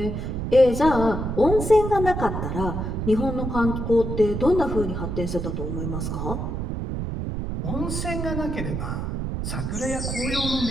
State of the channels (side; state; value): right; noise; rumble, 3 dB below the sound